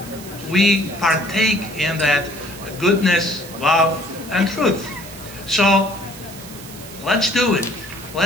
We partake in that goodness, love, and truth. So let's do it.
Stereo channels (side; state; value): right; noise; hiss, 16 dB below the sound